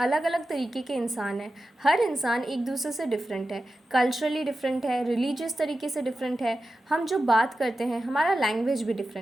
अलग तरीके के इंसान हैं। हर इंसान एक दूसरे से डिफरेंट है, कल्चरली डिफरेंट है, रिलीजियस तरीके से डिफरेंट है। हम जो बात करते हैं, हमारा लैंग्वेज भी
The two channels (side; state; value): both; normal; correlation 0.93